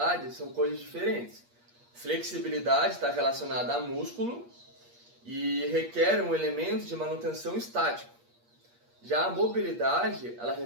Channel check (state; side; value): late; left; 8.4 ms